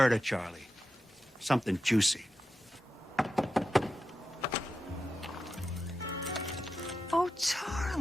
Charlie. Something juicy. Oh,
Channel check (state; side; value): normal; both; correlation 0.89